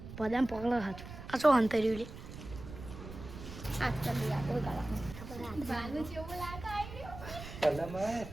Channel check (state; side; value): noise; right; rumble, 12 dB below the sound